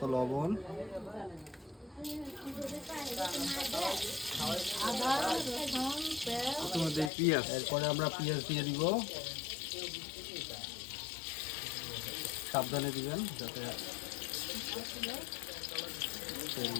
লবণ, আদা, রসুন, পেঁয়াজ, তোমাদের পেঁয়াজ। এরপরে আমরা পেঁয়াজ দিয়ে দিব। সাবধানে দিবেন যাতে তেল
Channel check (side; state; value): right; drops out; at 7.1 s